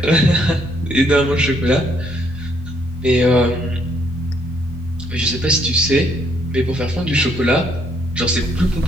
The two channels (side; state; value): both; normal; correlation 0.69